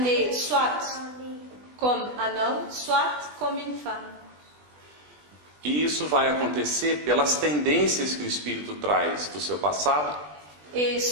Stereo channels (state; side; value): late; left; 20 ms